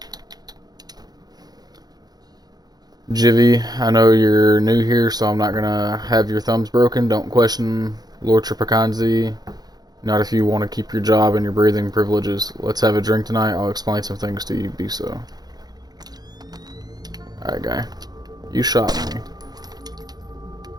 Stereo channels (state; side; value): late; left; 0.19 ms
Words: Jivy, I know you're new here, so I'm not gonna have your thumbs broken. Don't question Lord Tripacanzi. Not if you want to keep your job and your breathing privileges. Let's have a drink tonight. I'll explain some things to you. Be so. Alright, guy. You shot me.